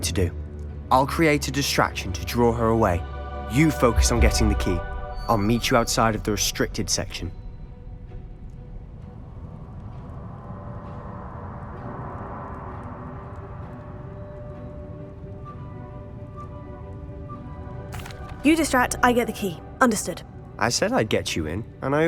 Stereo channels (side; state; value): both; identical; correlation 1.00